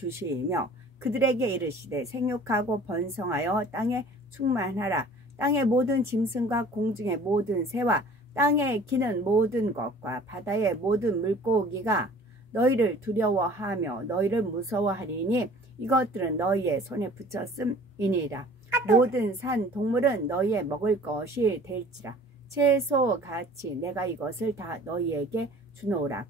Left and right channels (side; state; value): both; normal; correlation 0.48